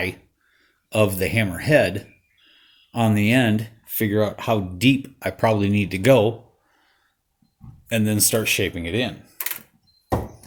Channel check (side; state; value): both; identical; correlation 1.00